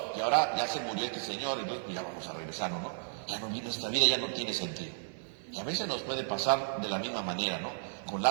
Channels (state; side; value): silent; left; digital silence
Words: y ahora ya se murió este Señor, y entonces pues ya vamos a regresarnos, ¿no? Ya no, nuestra vida ya no tiene sentido. Y a veces nos puede pasar de la misma manera, ¿no? Con